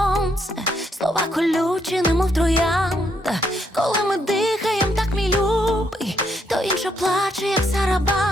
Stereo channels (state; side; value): normal; both; correlation 0.75